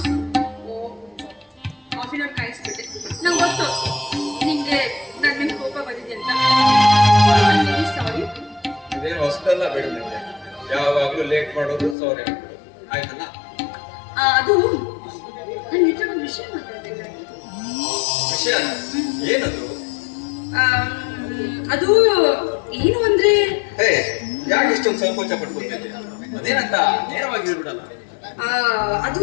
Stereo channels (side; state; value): right; drops out; at 12.0 s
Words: ಇದೇನು ಅಷ್ಟೆಲ್ಲ ಬೇಡ ನಿಮಗೆ, ಯಾವಾಗ್ಲೂ ಲೇಟ್ ಮಾಡೋದು ಸಾರಿ ಆಗ್ಬಿಡೋದು, ಆಯ್ತಲ್ಲ? ಅದು ನನ್ನ ಹತ್ರ ಒಂದು ವಿಷಯ ಮಾತಾಡ್ಬೇಕಾಗಿತ್ತು. ವಿಷಯ ಏನದು? ಅದು ಏನು ಅಂದ್ರೆ, ಹೇ ಯಾಕೆ ಇಷ್ಟೊಂದು ಸಂಕೋಚ ಪಡ್ಕೊತಿದ್ದೆ? ಅದೇನಂತ ನೇರವಾಗಿ ಹೇಳ್ಬಿಡಲ್ಲ. ಅದು